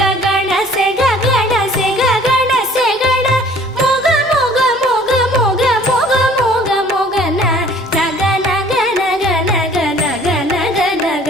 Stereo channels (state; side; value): normal; both; correlation 0.53